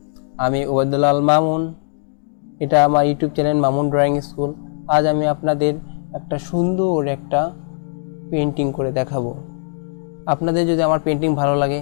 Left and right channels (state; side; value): silent; right; digital silence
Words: আমি ওবায়দুল্লাহ আল মামুন। এটা আমার YouTube channel Mamun drawing school. আজ আমি আপনাদের একটা সুন্দর একটা পেন্টিং করে দেখাবো। আপনাদের যদি আমার পেন্টিং ভালো লাগে